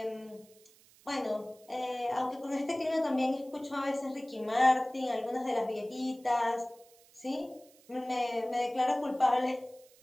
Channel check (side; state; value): right; noise; hiss, 27 dB below the sound